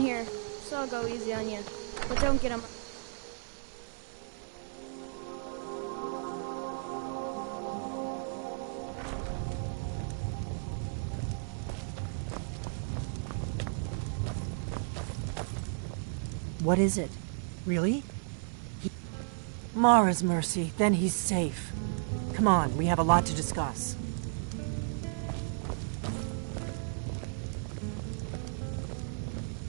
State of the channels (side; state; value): left; silent; 55 dB below the other